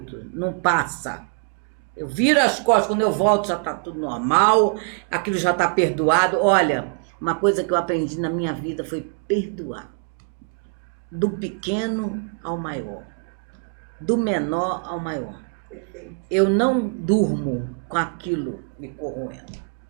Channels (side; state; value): left; quieter; 38.6 dB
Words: não passa. Eu viro as costas, quando eu volto já tá tudo normal, aquilo já tá perdoado. Olha, uma coisa que eu aprendi na minha vida foi perdoar. Do pequeno ao maior, do menor ao maior. Perfeito. Eu não durmo com aquilo me corroendo.